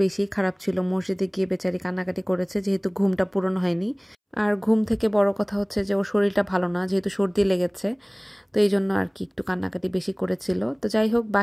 বেশি খারাপ ছিল, মসজিদে গিয়ে বেচারি কান্নাকাটি করেছে যেহেতু ঘুমটা পূরণ হয়নি। আর ঘুম থেকে বড় কথা হচ্ছে যে ওর শরীরটা ভালো না, যেহেতু সর্দি লেগেছে, তো এই জন্য আর কি একটু কান্নাকাটি বেশি করেছিল। তো যাই হোক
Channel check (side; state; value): both; identical; correlation 1.00